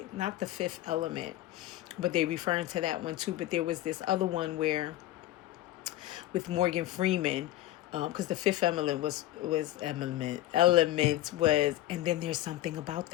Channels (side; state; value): right; quieter; 15.1 dB